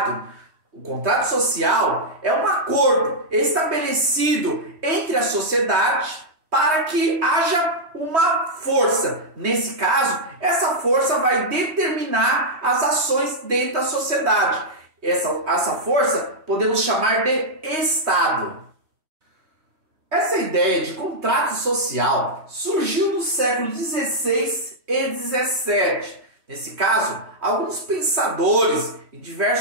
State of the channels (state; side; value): late; left; 3.1 ms